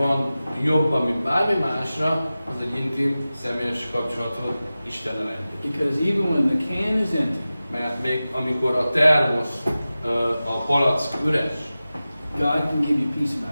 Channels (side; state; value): both; inverted; correlation -0.96